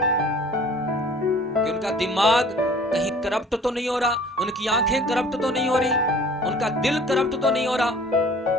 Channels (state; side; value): normal; both; correlation 0.49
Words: कि उनका दिमाग कहीं करप्ट तो नहीं हो रहा, उनकी आंखें करप्ट तो नहीं हो रही, उनका दिल करप्ट तो नहीं हो रहा।